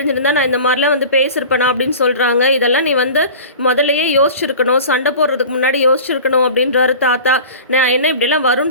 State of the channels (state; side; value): inverted; both; correlation -0.37